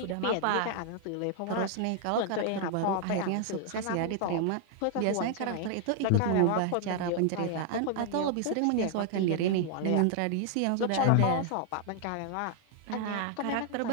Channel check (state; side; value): different; both; correlation 0.00